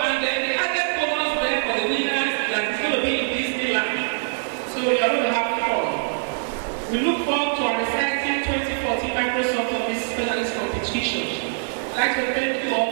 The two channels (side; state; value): left; silent; digital silence